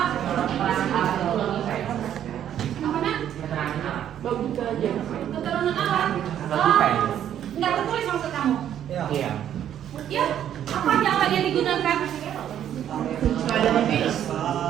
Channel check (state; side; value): quieter; left; 10.3 dB